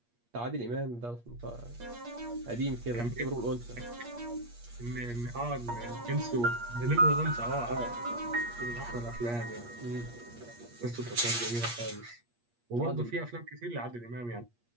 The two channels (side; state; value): left; late; 8.4 ms